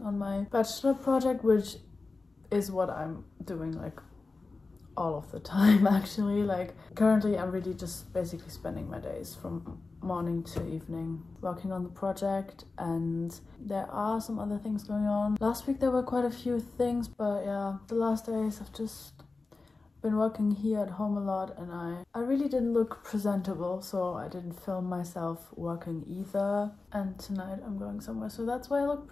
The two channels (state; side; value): quieter; right; 3.8 dB